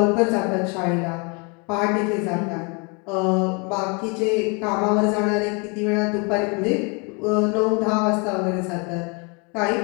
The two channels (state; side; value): quieter; right; 32.3 dB